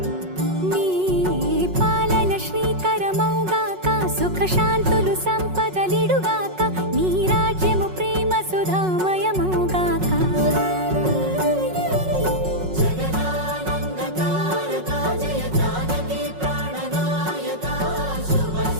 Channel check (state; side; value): late; left; 5.4 ms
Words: నీ పాలన శ్రీకరమౌగాక సుఖ శాంతులు సంపదలిడుగాక నీ రాజ్యము ప్రేమ సుధామయమౌగాక